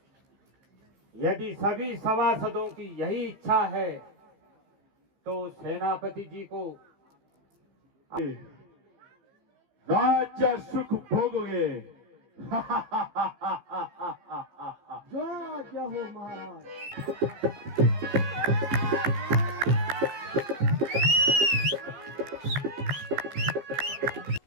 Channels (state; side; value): late; left; 15 ms